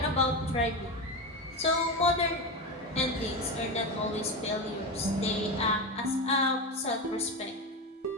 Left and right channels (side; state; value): both; normal; correlation 0.18